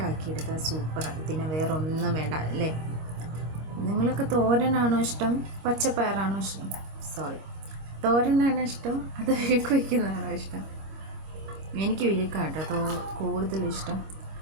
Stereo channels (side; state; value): left; late; 25 ms